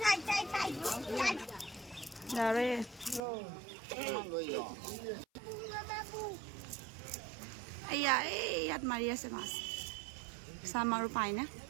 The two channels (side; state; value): left; drops out; at 3.2 s